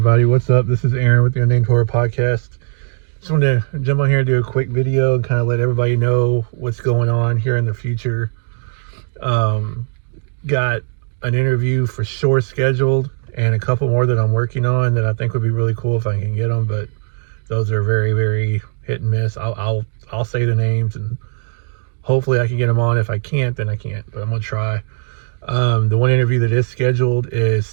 what's up? This is Aaron with the Unnamed Horror Podcast. Just wanted to jump on here and do a quick video and kind of let everybody know what's going on here in the future. Got an interview for sure scheduled and a couple more that I'm working on that I think would be really cool if I can get them, but those are very, very hit and miss. I'll say the names and hopefully I can get them on. If I can't, then I can't, but I'm gonna try. The one interview that is scheduled is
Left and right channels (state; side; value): silent; left; digital silence